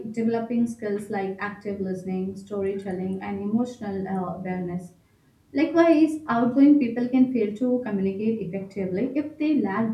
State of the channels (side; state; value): both; identical; correlation 1.00